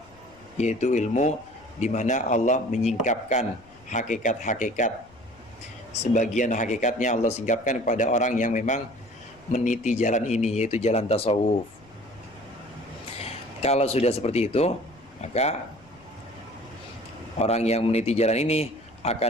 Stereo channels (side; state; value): left; noise; rumble, 27 dB below the sound